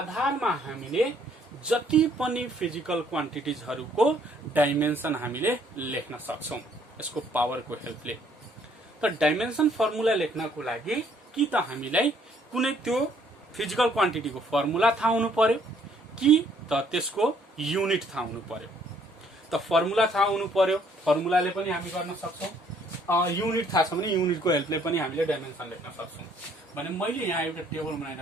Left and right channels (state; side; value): normal; both; correlation 0.64